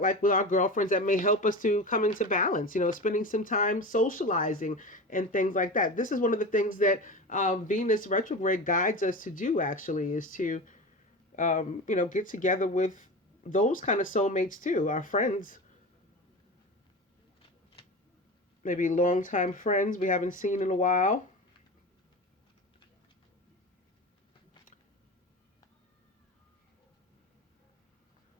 like with our girlfriends that may help us to come into balance, spending some time socializing and things like that. This is one of the things that Venus retrograde guides us to do, actually, is to, get together with those kind of soulmates too, our friends, maybe longtime friends we haven't seen in a while.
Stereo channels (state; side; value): normal; both; correlation 0.28